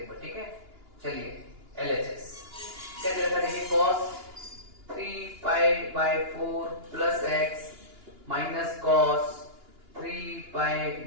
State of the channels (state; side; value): late; left; 2.9 ms